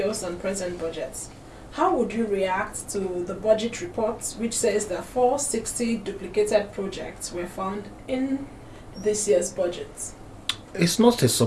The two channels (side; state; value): both; identical; correlation 1.00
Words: and present budgets. How would you react to the budget report, which says that 460 duplicated projects were found in this year's budget? It's not a